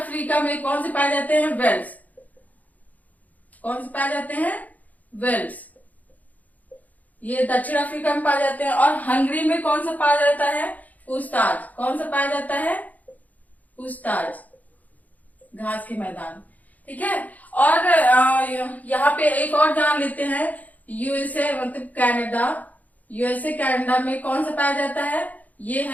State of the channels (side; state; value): right; late; 0.077 ms